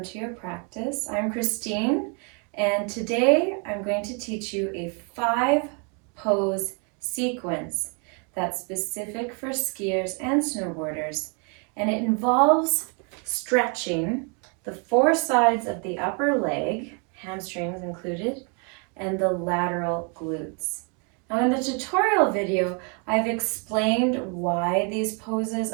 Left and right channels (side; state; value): left; quieter; 36.5 dB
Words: to your practice. I'm Christine, and today I'm going to teach you a 5-pose sequence that's specific for skiers and snowboarders, and it involves stretching the 4 sides of the upper leg, hamstrings included, and the lateral glutes. Now in the tutorial video, I've explained why these poses